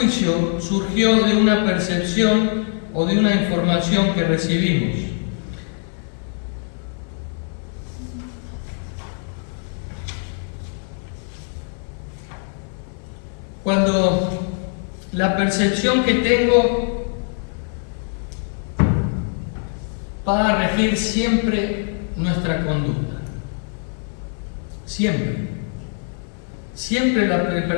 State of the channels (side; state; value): right; silent; 55 dB below the other